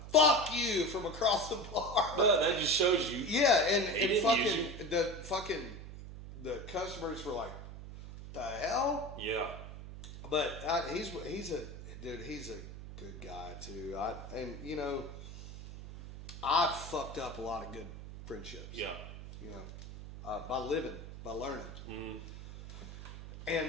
fuck you, from across the bar. But that just shows you. Yeah, and the customers were like, the hell? Yeah. But he's a good guy too. And you know, I've fucked up a lot of good friendships. Yeah. You know, by living, by learning. Mm-hmm.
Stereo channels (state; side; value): noise; right; hum, 12 dB below the sound